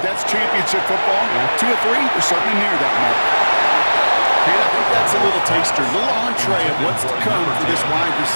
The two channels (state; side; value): inverted; both; correlation -1.00